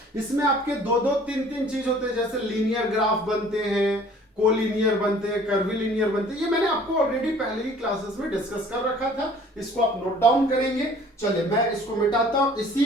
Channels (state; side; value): normal; both; correlation 0.52